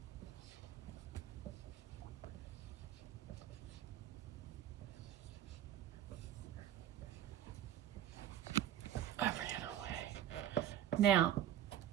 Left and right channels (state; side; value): quieter; left; 11.0 dB